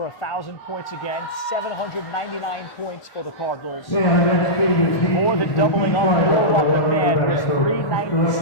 1,000 points again. 799 points for the Cardinals. More than doubling up on Norwalk McMahon was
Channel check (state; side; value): normal; both; correlation -0.14